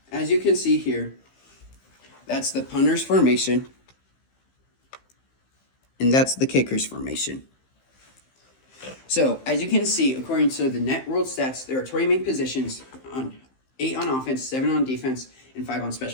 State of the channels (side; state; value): right; late; 15 ms